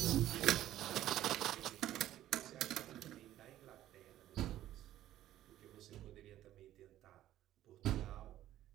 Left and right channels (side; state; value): left; quieter; 13.3 dB